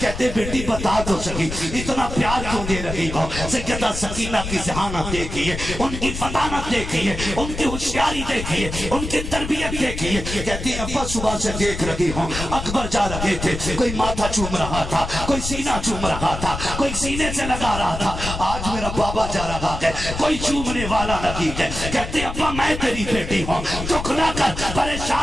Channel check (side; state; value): left; noise; rumble, 6 dB below the sound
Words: بیٹی بتا تو سکی اتنا پیار کیوں دے رہی ہو. سیدہ سکینہ کی ذہانت دیکھیے, ان کی فطانت دیکھیے, ان کی ہوشیاری دیکھیے, ان کی تربیت دیکھیے. کہتی ابا صبح سے دیکھ رہی ہوں اکبر جا رہے تھے, کوئی ماتھا چوم رہا تھا, کوئی سینہ چوم رہا تھا, کوئی سینے سے لگا رہا تھا. آج میرا بابا جا رہا ہے کوئی چومنے والا نہیں ہے. کہتے ابا میں تیری بیٹی ہوں, دکھ نہ کر,